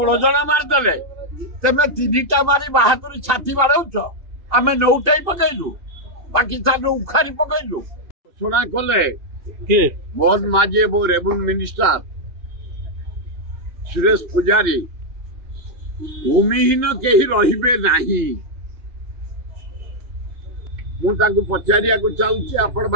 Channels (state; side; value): late; left; 2.6 ms